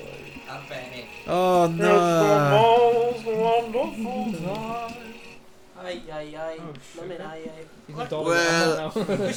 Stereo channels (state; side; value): identical; both; correlation 1.00